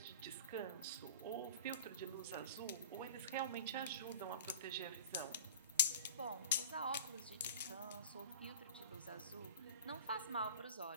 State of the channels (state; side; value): inverted; both; correlation -0.38